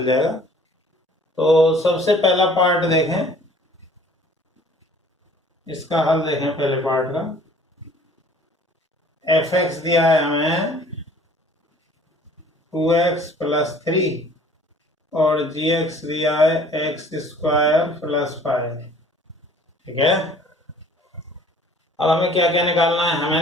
जाएगा। तो सबसे पहला पार्ट देखें, इसका हल देखें। पहले पार्ट का एफ एक्स दिया है हमें 2x + 3 और जी एक्स दिया है x² + 5। ठीक है, अब हमें क्या क्या निकालना है? हमें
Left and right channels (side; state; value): both; normal; correlation 0.52